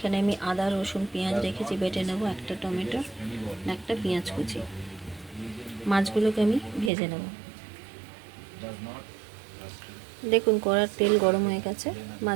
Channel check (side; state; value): left; drops out; at 6.9 s